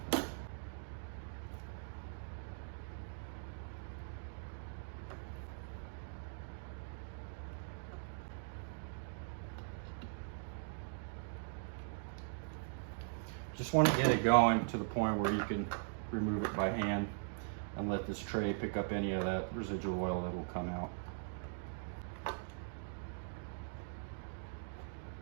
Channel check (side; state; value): left; silent; digital silence